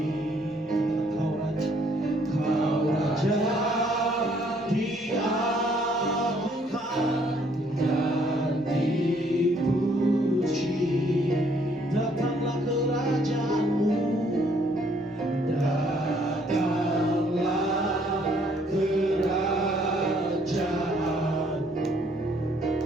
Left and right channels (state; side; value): normal; both; correlation 0.65